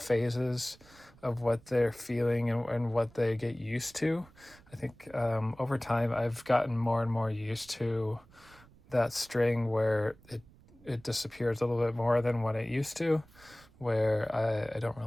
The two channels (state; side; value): noise; right; rumble, 25 dB below the sound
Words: of what they're feeling and what they get used to. I think over time I've gotten more and more used to that string where it disappears a little bit more than what it used to, where I don't